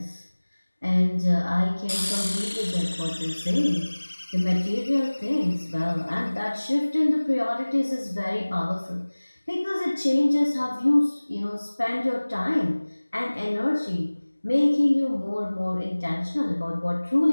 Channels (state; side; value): inverted; both; correlation -1.00